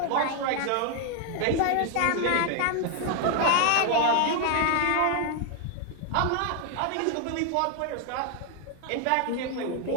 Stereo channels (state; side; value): different; both; correlation 0.00